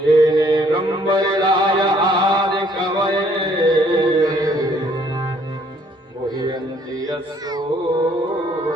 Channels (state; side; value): normal; both; correlation 0.63